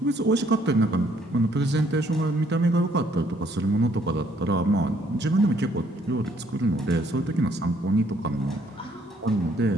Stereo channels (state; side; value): normal; both; correlation 0.66